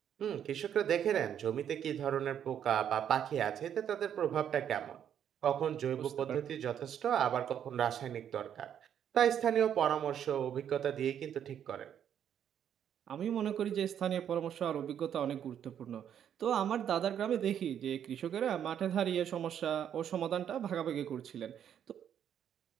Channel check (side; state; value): left; quieter; 9.3 dB